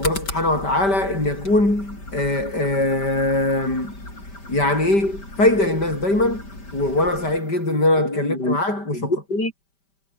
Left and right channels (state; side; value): late; right; 5.1 ms